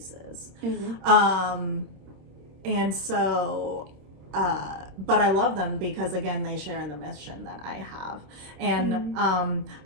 And so but I love them because again they share in the mission that I have. And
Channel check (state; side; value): late; left; 26 ms